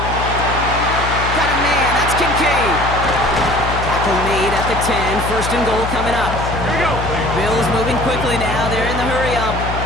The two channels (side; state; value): left; noise; hum, 5 dB below the sound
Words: Got a man, that's Kincaid. Tackle made at the 10, first and goal coming up. Here we go. Bills moving quickly now, they're in the hurry up.